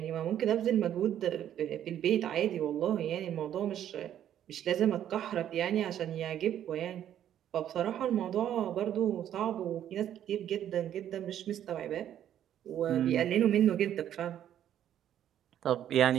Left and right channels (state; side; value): quieter; left; 10.7 dB